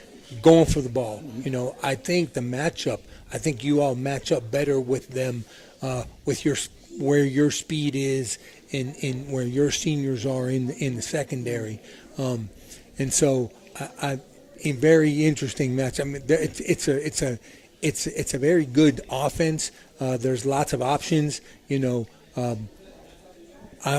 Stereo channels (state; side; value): identical; both; correlation 1.00